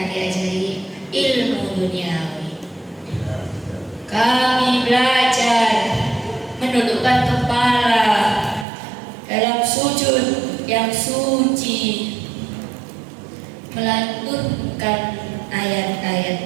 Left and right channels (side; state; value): left; drops out; at 8.7 s